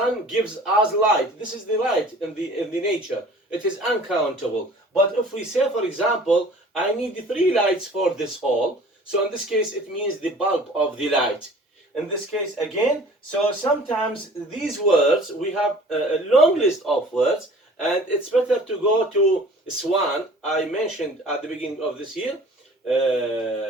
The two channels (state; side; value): normal; both; correlation 0.48